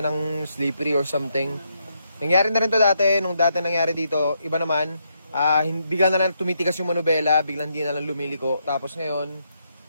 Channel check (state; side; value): inverted; both; correlation -0.78